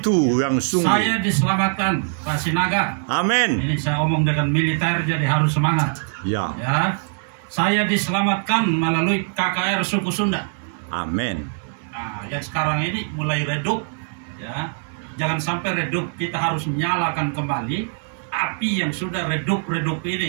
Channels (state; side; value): silent; left; 64 dB below the other